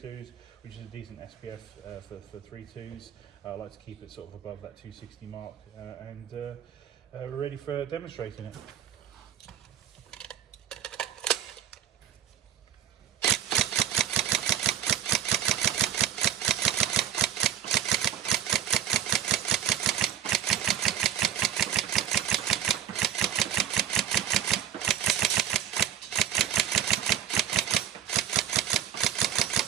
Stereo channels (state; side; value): quieter; left; 9.6 dB